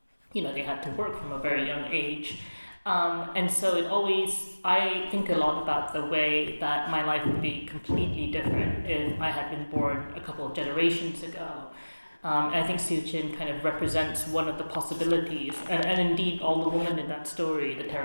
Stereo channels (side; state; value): both; inverted; correlation -1.00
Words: They had to work from a very young age. And so I think a lot about the way that my life would be completely different if I had been born a couple of generations ago. And I think Siu Chin kind of represents one of the possibilities, and indeed all the women in that story, the